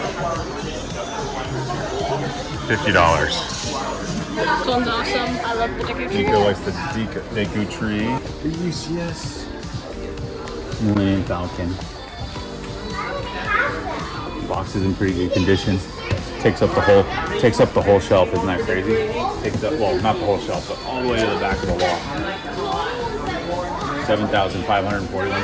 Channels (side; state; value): both; identical; correlation 1.00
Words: $50. This one's awesome. I love the Deku Tree. Nico likes the Deku Tree. The UCS Millennium Falcon. Box is in pretty good condition. Takes up the whole shelf. Isn't that crazy? Takes up, well, not the whole shelf, but all the way to the back of the wall.